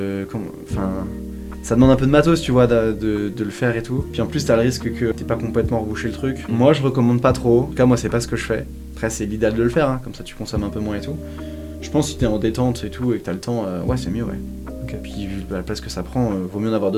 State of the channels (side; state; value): both; identical; correlation 1.00